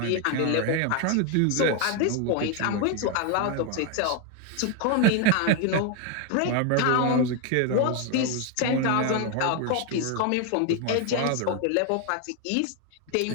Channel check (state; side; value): different; both; correlation 0.01